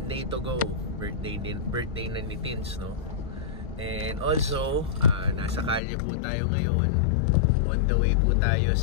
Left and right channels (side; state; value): right; drops out; at 5.8 s